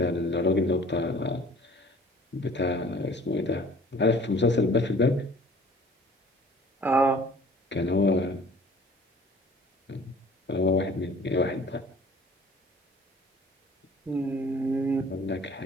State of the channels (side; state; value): both; normal; correlation 0.50